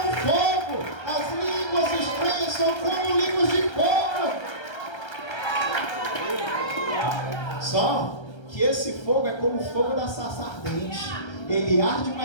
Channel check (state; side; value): late; right; 1.3 ms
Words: fogo. As línguas estranhas são como línguas de fogo. Só que esse fogo é como o fogo da sarça ardente. Ele arde,